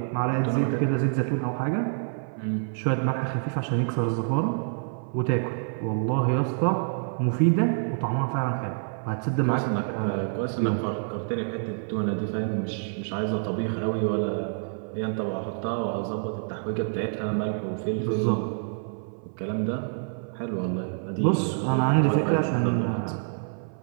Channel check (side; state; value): left; silent; 56 dB below the other